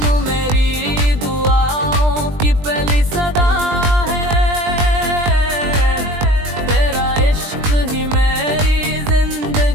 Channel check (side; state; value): left; late; 20 ms